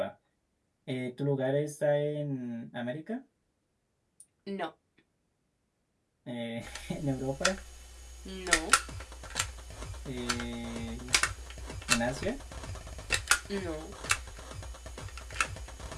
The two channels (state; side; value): identical; both; correlation 1.00